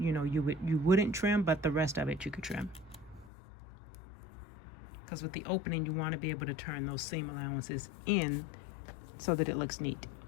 know, you wouldn't trim, but the rest of it you could trim. Because with the opening, you want to be able to turn those seam allowances in so that it looks neat.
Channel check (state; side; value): drops out; right; at 3.3 s